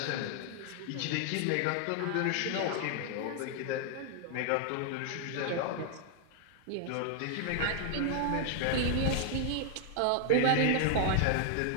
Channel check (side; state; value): both; different; correlation 0.00